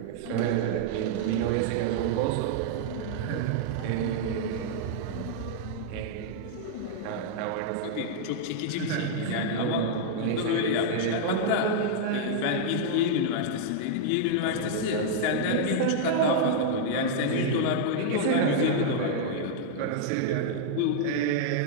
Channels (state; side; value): different; both; correlation -0.01